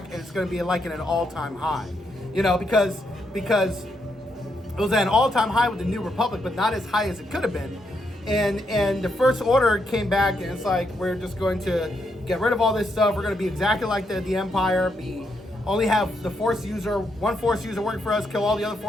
and it's going to be like in an all-time high. You know, because it was at an all-time high with the New Republic, but not as high as it could have been. And the First Order came back, and it's like, we're just going to get rid of all this stuff. We're gonna be exactly like the Empire. Only have the one Force user working for us, kill all the other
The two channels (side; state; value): both; normal; correlation 0.79